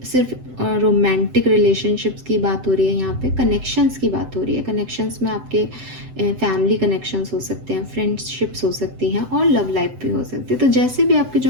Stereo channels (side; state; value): left; late; 7.9 ms